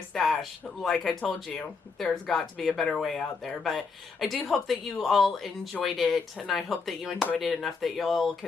Stash. Like I told you, there's got to be a better way out there. But I do hope that you all enjoyed it, and I hope that you enjoyed it enough that you'll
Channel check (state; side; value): quieter; right; 4.7 dB